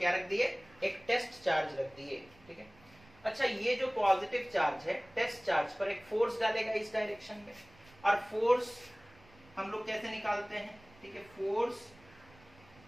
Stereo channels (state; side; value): noise; right; rumble, 26 dB below the sound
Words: रख दिए, एक टेस्ट चार्ज रख दिए, ठीक है। अच्छा, ये जो पॉजिटिव चार्ज है, टेस्ट चार्ज पर एक फोर्स डालेगा इस डायरेक्शन में, और फोर्स हम लोग कैसे निकालते हैं, ठीक है, force